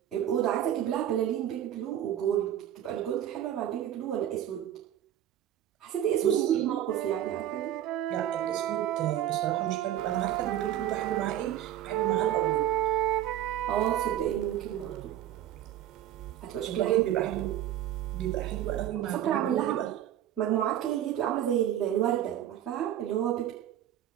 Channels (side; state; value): left; quieter; 11.5 dB